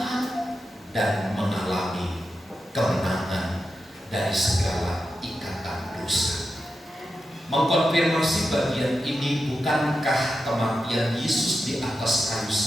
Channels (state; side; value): normal; both; correlation 0.89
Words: dan mengalami kemenangan dari segala ikatan dosa. Mengkonfirmasi bagian ini, bukankah kematian Yesus di atas kayu